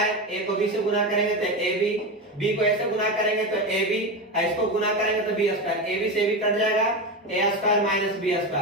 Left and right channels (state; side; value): normal; both; correlation 0.18